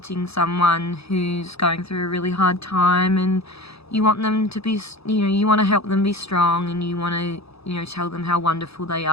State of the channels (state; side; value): late; right; 0.78 ms